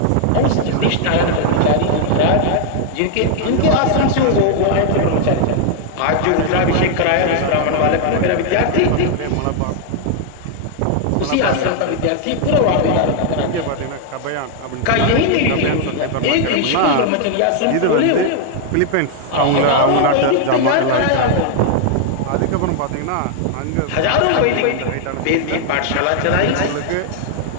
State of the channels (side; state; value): both; different; correlation 0.00